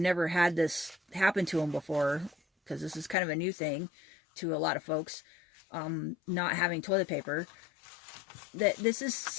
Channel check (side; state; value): right; drops out; at 3.2 s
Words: had this happen to them before, because this is kind of a new thing to a lot of folks, not having toilet paper, that this is